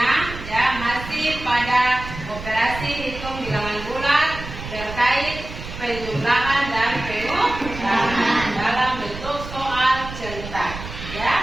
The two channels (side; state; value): right; noise; rumble, 11 dB below the sound